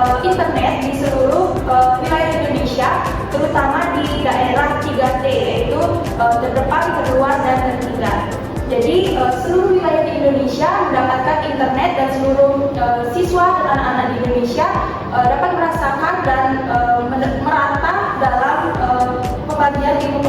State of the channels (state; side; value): identical; both; correlation 1.00